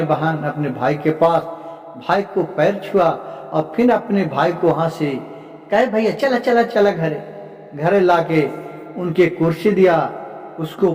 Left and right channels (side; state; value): both; identical; correlation 1.00